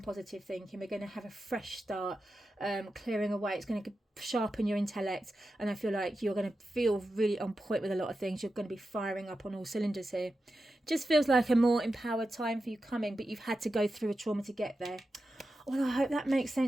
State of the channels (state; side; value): normal; both; correlation 0.91